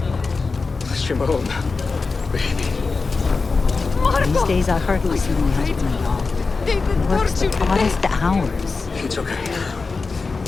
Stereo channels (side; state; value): right; quieter; 4.2 dB